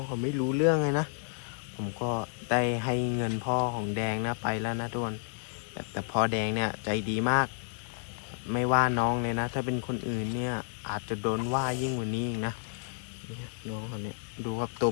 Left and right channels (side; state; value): right; silent; digital silence